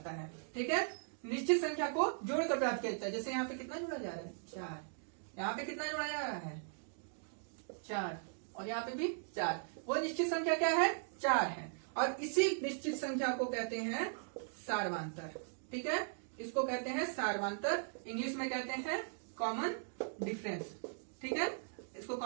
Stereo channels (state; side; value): silent; left; digital silence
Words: है। ठीक है, निश्चित संख्या को जोड़कर प्राप्त किया जाता है। जैसे यहाँ पे कितना जोड़ा जा रहा है, 4, यहाँ पे कितना जोड़ा जा रहा है, 4, और यहाँ पे भी 4। वो निश्चित संख्या क्या है, 4 है, और इसी निश्चित संख्या को कहते हैं सारवांतर। ठीक है, इसको कहते हैं सारवांतर, इंग्लिश में कहते हैं कॉमन डिफरेंस। ठीक है, इसको